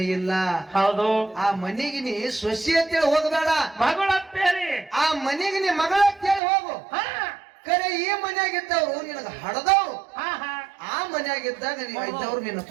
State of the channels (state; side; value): drops out; left; at 6.4 s